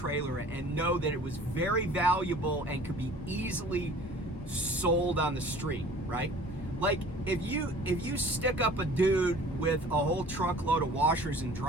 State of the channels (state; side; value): normal; both; correlation 0.48